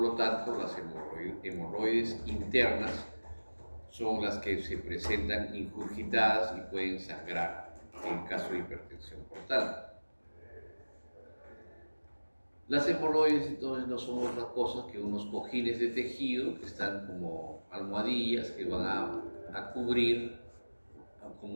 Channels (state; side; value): inverted; both; correlation -1.00